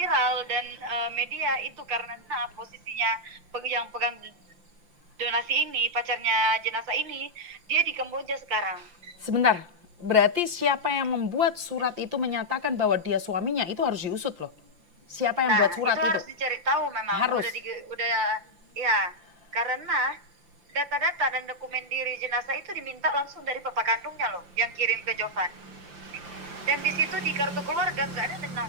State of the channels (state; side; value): late; left; 5.8 ms